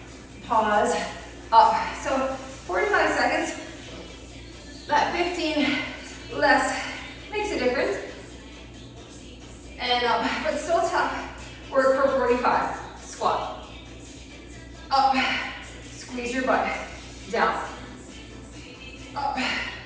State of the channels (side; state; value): both; identical; correlation 1.00